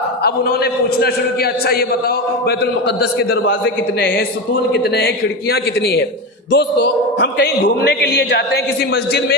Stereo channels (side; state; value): both; normal; correlation 0.19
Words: اب انہوں نے پوچھنا شروع کیا اچھا یہ بتاؤ بیت المقدس کے دروازے کتنے ہیں، ستون کتنے ہیں، کھڑکیاں کتنی ہیں۔ دوستو، ہم کہیں گھومنے کے لیے جاتے ہیں کسی مسجد میں